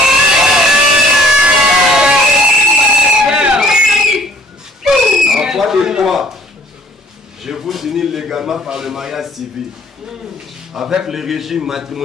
En foi de foi, je vous unis légalement par le mariage civil avec le régime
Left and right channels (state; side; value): normal; both; correlation 0.57